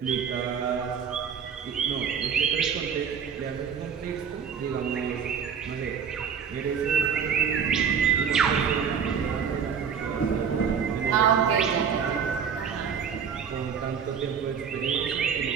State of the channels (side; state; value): left; quieter; 7.1 dB